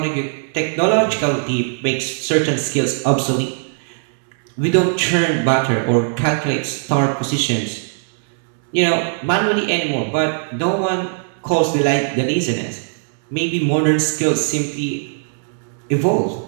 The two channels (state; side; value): silent; left; digital silence